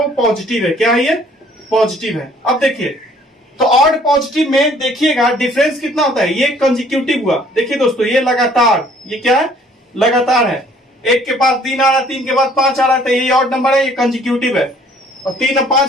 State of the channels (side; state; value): both; normal; correlation 0.58